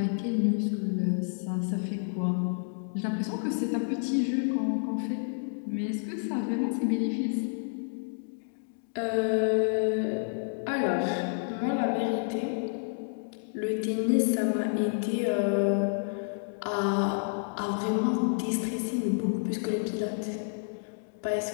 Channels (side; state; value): right; silent; digital silence